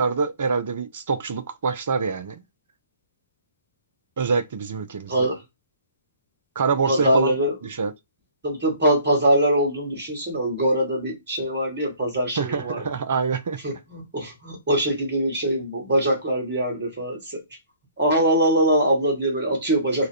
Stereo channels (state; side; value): inverted; both; correlation -0.56